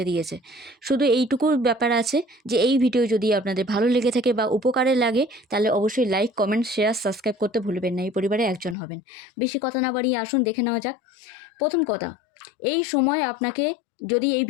দিয়েছে। শুধু এইটুকু ব্যাপার আছে যে এই ভিডিও যদি আপনাদের ভালো লেগে থাকে বা উপকারে লাগে, তাহলে অবশ্যই লাইক, কমেন্ট, শেয়ার, সাবস্ক্রাইব করতে ভুলবেন না। এই পরিবারে একজন হবেন। বেশি কথা না বাড়িয়ে আসুন দেখে নেওয়া যাক। প্রথম কথা, এই সময় আপনাকে, যদি এই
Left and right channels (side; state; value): right; drops out; at 8.8 s